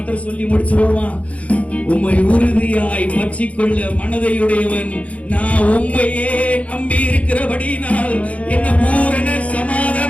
சொல்லி முடிச்சிருவோமா? உம்மை உறுதியாய் பற்றிக்கொள்ள மனதையுடையவன் நான் உண்மையே நம்பி இருக்கிறபடினால் என்ன பூரண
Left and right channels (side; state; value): right; late; 0.065 ms